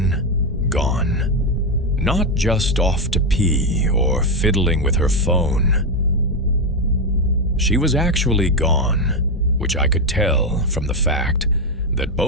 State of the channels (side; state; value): both; normal; correlation 0.07